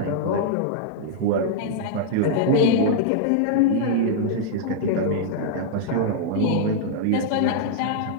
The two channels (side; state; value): both; different; correlation -0.01